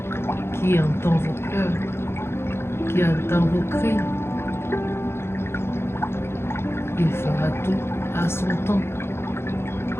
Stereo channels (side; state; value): right; late; 0.12 ms